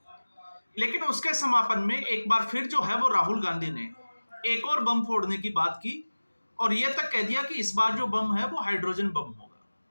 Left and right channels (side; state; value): both; inverted; correlation -1.00